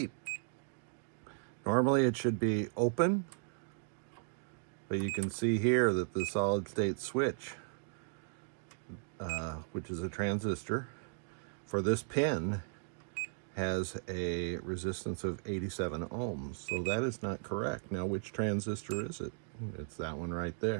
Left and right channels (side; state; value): left; silent; digital silence